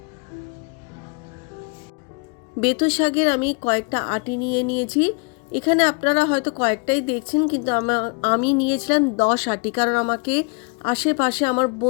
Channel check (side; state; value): right; quieter; 33.7 dB